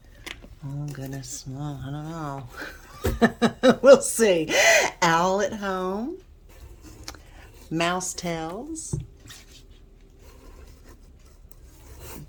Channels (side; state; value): both; identical; correlation 1.00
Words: Oh goodness, well, I don't know. We'll see. Owl at Home, Mouse Tales,